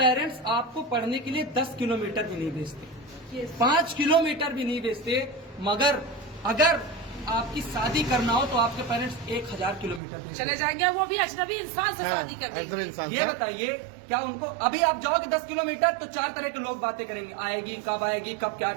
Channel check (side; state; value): left; drops out; at 10.0 s